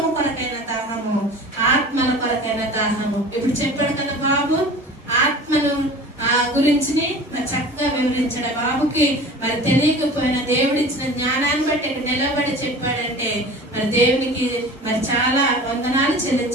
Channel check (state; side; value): normal; both; correlation 0.40